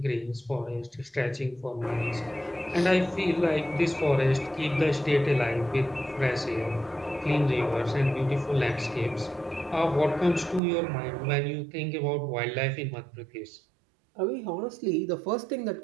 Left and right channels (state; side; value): drops out; left; at 10.6 s